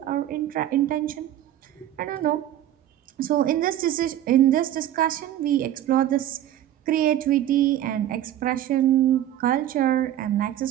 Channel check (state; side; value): quieter; left; 12.3 dB